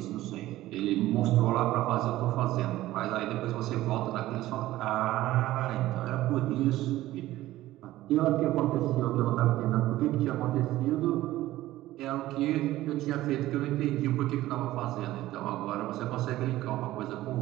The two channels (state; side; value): quieter; left; 15.7 dB